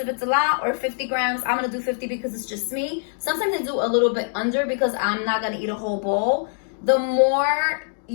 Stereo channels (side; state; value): right; silent; digital silence